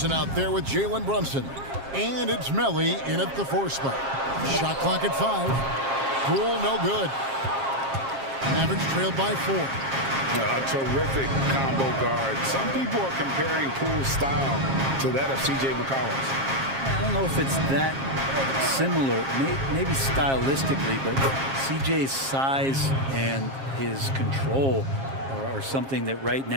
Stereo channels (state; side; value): late; left; 7.4 ms